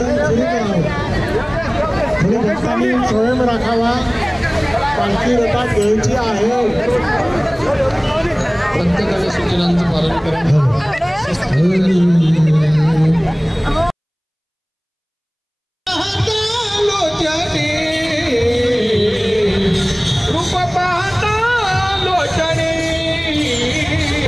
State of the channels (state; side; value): identical; both; correlation 1.00